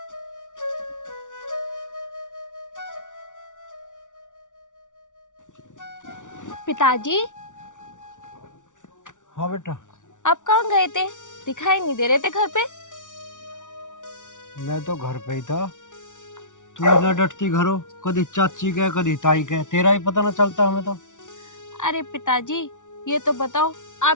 पिताजी, हाँ बेटा, आप कहाँ गए थे? दिखाई नहीं दे रहे थे घर पे। मैं तो घर पे ही था। तू ना डटती घरों, कभी चाची के कभी ताई के, तेरा ही पता ना चलता हमें तो। अरे पिताजी, ये तो बताओ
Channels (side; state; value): right; late; 0.87 ms